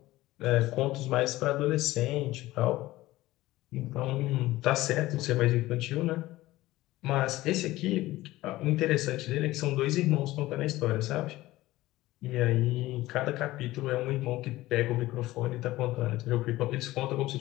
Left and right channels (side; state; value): right; quieter; 17.3 dB